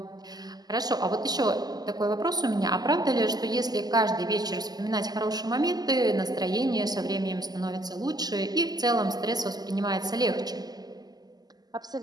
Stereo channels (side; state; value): left; late; 0.20 ms